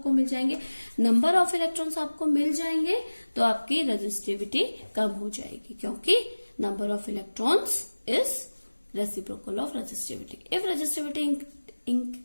मिल जाएंगे, नंबर ऑफ इलेक्ट्रॉन्स आपको मिल जाएंगे तो आपकी रेजिस्टिविटी कम हो जाएगी, क्योंकि number of electrons is reciprocal of resistivity. If resistivity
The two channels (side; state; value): both; inverted; correlation -1.00